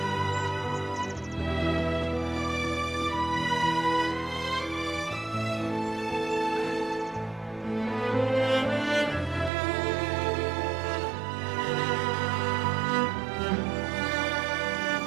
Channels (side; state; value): left; drops out; at 9.5 s